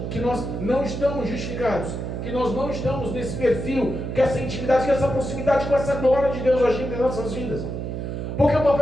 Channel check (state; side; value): noise; right; hum, 5 dB below the sound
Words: que nós não estamos justificados, que nós não estamos nesse perfil, que essa intimidade, que essa proximidade com essa glória de Deus agindo em nossas vidas. Porque o